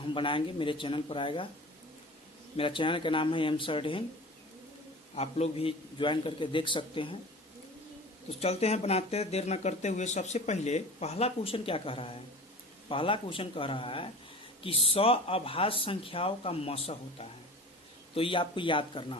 बनाएंगे, मेरे चैनल पर आएगा। मेरा चैनल का नाम है एम सरडेन, आप लोग भी ज्वाइन करके देख सकते हैं। तो चलते हैं, बनाते हैं, देर न करते हुए। सबसे पहले पहला क्वेश्चन क्या कह रहा है? पहला क्वेश्चन कह रहा है कि 100 अभाज्य संख्याओं का मसा होता है। तो ये आपको याद करना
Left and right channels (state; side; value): normal; both; correlation 0.38